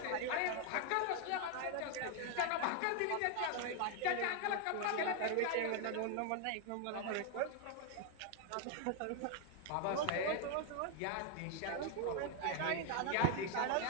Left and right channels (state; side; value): different; both; correlation 0.01